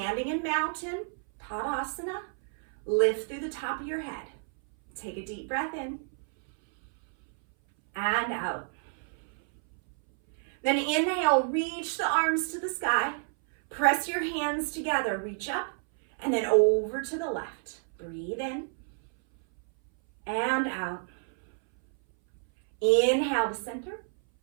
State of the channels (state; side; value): silent; left; 58 dB below the other